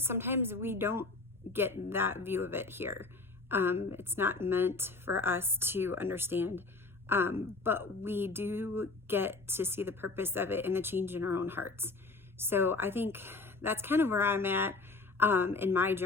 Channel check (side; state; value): right; quieter; 3.6 dB